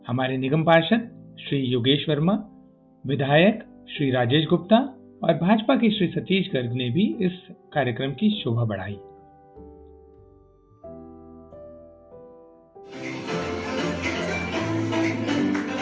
हमारे निगम पार्षद श्री योगेश वर्मा, विधायक श्री राजेश गुप्ता और भाजपा के श्री सतीश गर्ग ने भी इस कार्यक्रम की शोभा बढ़ाई।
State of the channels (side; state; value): both; identical; correlation 1.00